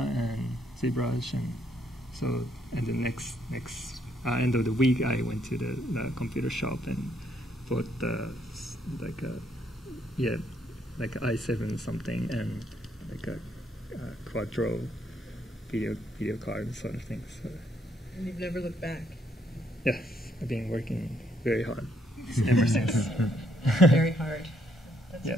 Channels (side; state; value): both; normal; correlation 0.71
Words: and ZBrush, and so and the next end of the week I went to the computer shop and bought like i7 something and like a quadro video card sort of thing. So. And you've never looked back. Yes, I've been working very hard ever since. Very hard. That's Yeah.